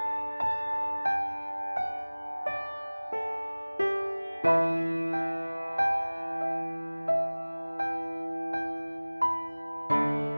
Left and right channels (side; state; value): both; inverted; correlation -1.00